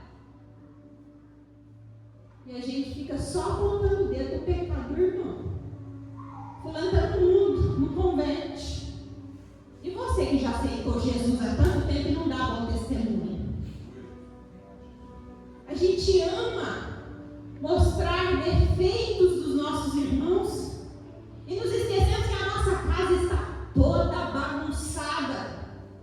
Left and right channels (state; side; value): identical; both; correlation 1.00